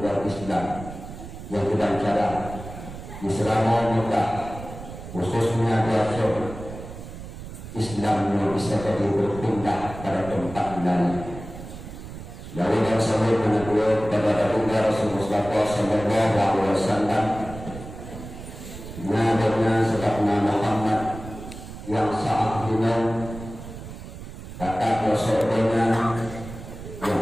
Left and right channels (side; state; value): right; noise; rumble, 12 dB below the sound